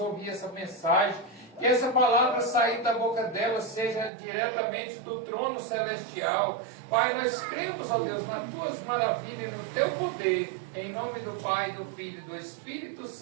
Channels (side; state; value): left; drops out; at 4.1 s